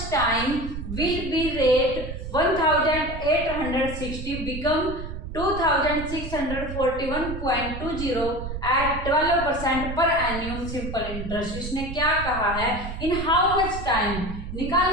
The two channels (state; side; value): noise; right; rumble, 7 dB below the sound